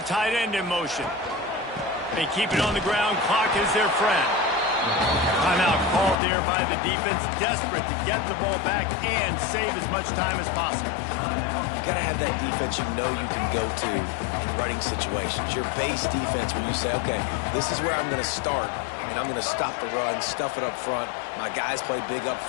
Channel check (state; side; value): drops out; right; at 6.2 s